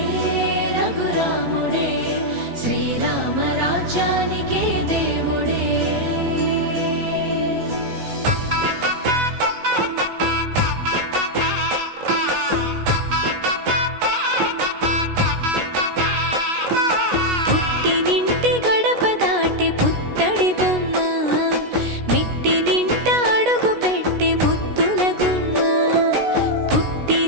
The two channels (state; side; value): late; left; 16 ms